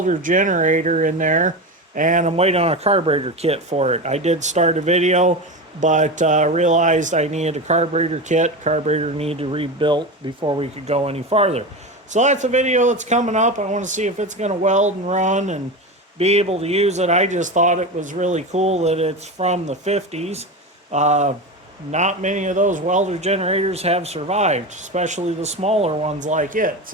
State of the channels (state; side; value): normal; both; correlation 0.22